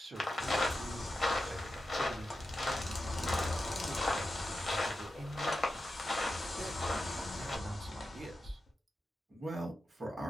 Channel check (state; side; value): normal; both; correlation 0.90